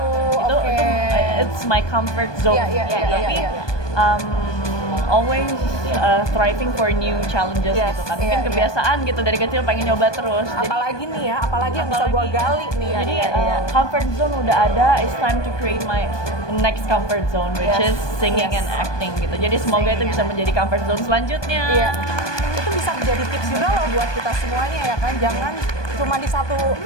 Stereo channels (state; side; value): late; right; 1.2 ms